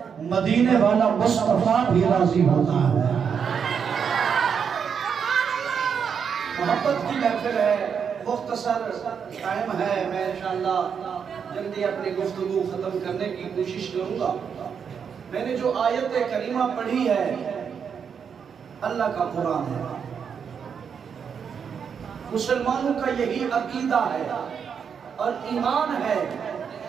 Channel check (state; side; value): quieter; left; 6.9 dB